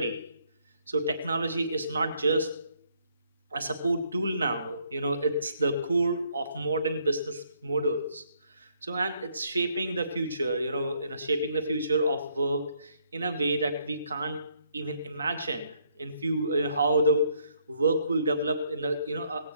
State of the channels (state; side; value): inverted; both; correlation -0.70